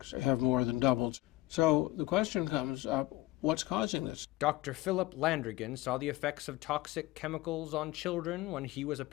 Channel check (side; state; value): right; quieter; 18.1 dB